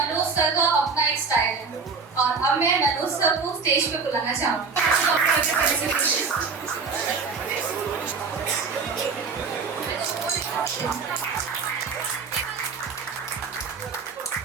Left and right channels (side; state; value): left; quieter; 5.0 dB